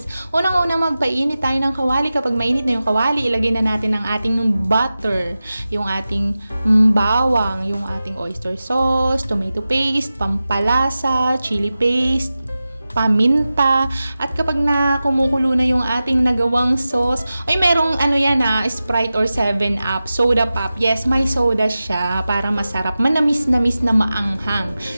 Unang-una, magpainit tayo ng kawali. Kapag mainit na yung kawali, ilagay na natin ang ating butter, yung ating bawang, yung ating oyster sauce, tomato paste, pampalasa, chili paste, paminta, at kapag na kumukulo na yung ating nagawang sauce, ay merong Sprite or 7-Up, soda pop. Yes, may soda siya para masarap, manamis-namis na maanghang.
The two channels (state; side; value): inverted; both; correlation -0.94